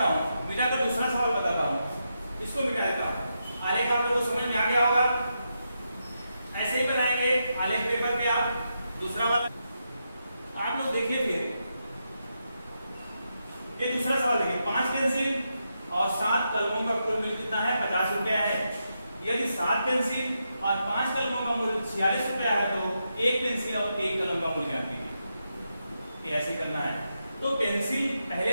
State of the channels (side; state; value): both; inverted; correlation -0.85